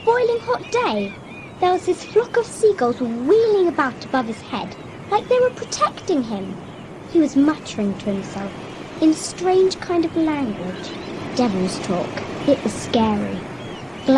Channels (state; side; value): identical; both; correlation 1.00